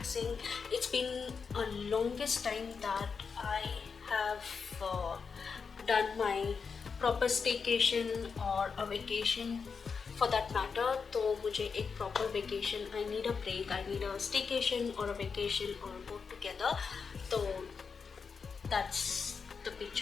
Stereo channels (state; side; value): quieter; right; 5.5 dB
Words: It's been a longest time that I have done my proper staycation or a vacation for that matter. तो मुझे एक proper vacation, I need a break, I need a staycation or a vacation or both together. So that's the